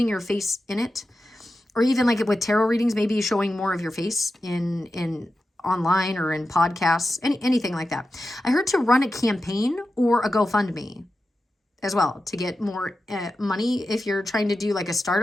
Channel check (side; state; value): both; normal; correlation 0.92